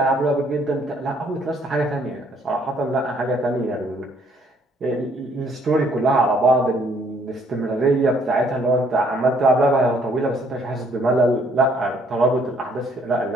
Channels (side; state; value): both; normal; correlation 0.64